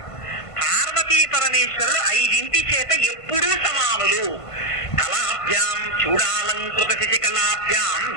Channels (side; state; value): right; late; 1.5 ms